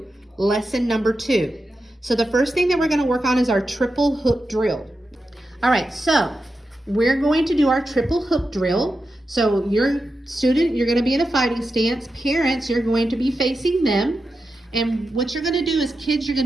lesson number 2. So the first thing that we're going to work on is our triple hook drill. All right, so we're going to do our triple hook drill. So your student, you're going to be in a fighting stance. Parents, you're going to be facing them. And what you're going to do is, kids, you're going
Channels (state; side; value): normal; both; correlation 0.89